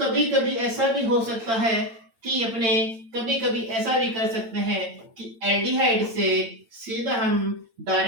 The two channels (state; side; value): late; left; 8.9 ms